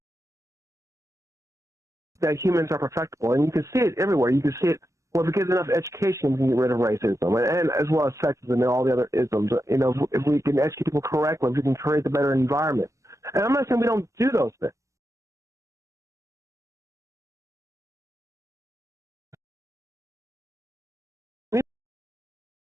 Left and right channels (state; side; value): late; left; 0.15 ms